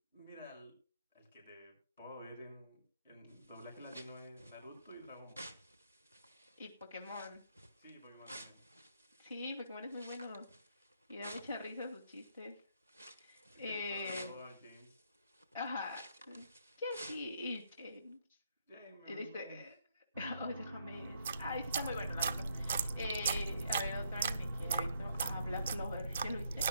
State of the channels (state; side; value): inverted; both; correlation -0.74